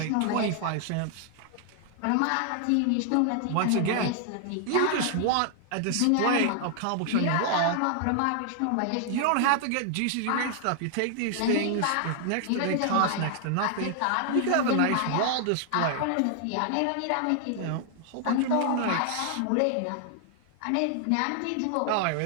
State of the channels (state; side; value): different; both; correlation 0.00